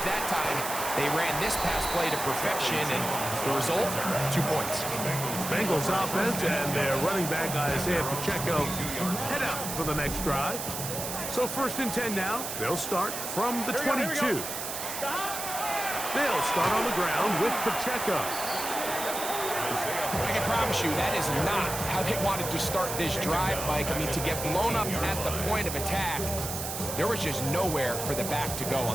that time, they ran this pass play to perfection, and the result, 2 points. Bengals offense and their running back Isaiah Pacheco head out for the next drive. So 1st and 10 now. They'll start from the 22. They'll start on the ground with Pacheco. I can promise you that is not how they wanted to start this drive, Mike. I mean, to get blown up at the point of attack, there was just nowhere for the back to go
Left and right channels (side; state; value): right; noise; hiss, 5 dB below the sound